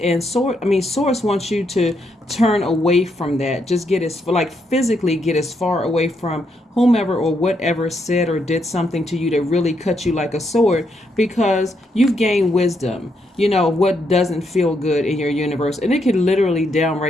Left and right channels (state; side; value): normal; both; correlation 0.78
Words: Source wants you to turn away from that. Just physically get as far away from whomever or whatever said or did something to you that really cut you like a sword, because you've gained wisdom. You know what doesn't feel good in your universe, and it can literally